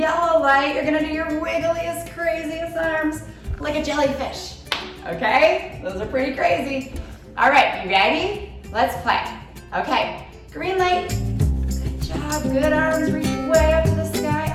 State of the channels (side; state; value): both; identical; correlation 1.00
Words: light, you're gonna do your wiggliest, craziest arms like a jellyfish. Okay? Those are pretty crazy. All right, you ready? Let's play. Okay, green light. Good job, good arms, reach way up to the